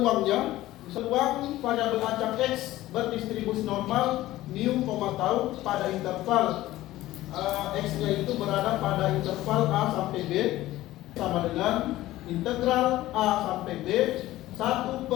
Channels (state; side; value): quieter; right; 16.0 dB